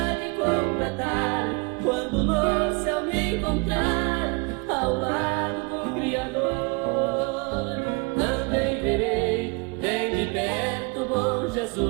de completar, quando no céu me encontrar ao lado do Criador. Também verei bem de perto bom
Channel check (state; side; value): quieter; left; 31.5 dB